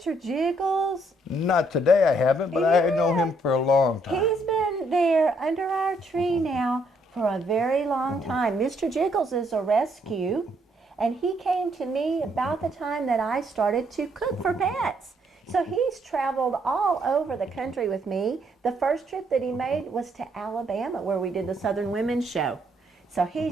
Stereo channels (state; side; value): normal; both; correlation 0.71